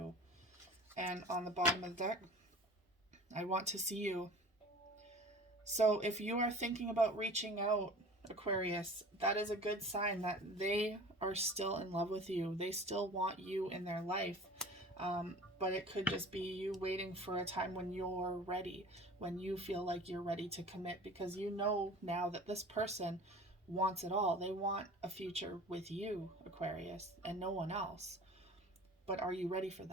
And on the bottom of the deck, I want to see you. So if you are thinking about reaching out, Aquarius, that is a good sign that they are still in love with you. They still want you in their life. But it could just be you waiting for a time when you're ready, when you feel like you're ready to commit, because you know now that this person wants it all. They want a future with you, Aquarius, and no one else. But are you ready for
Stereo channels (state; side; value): normal; both; correlation 0.41